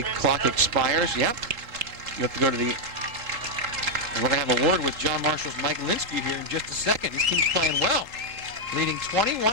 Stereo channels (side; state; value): left; late; 3.7 ms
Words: clock expires. Yep. You have to go to the... We're going to have a word with John Marshall's Mike Linsky here in just a second. This team's playing well, leading